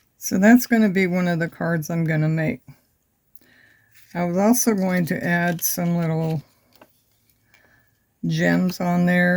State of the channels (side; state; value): both; identical; correlation 1.00